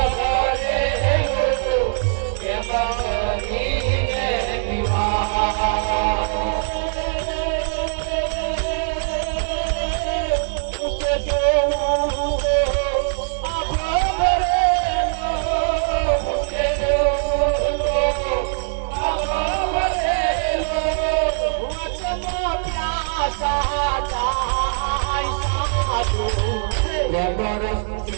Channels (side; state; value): left; silent; digital silence